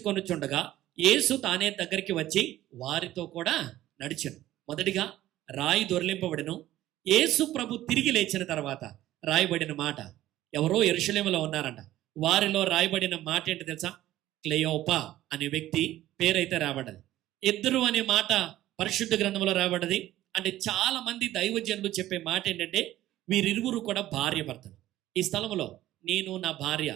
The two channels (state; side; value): quieter; left; 14.4 dB